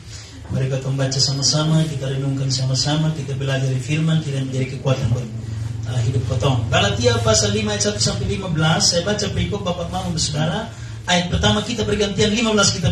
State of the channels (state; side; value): identical; both; correlation 1.00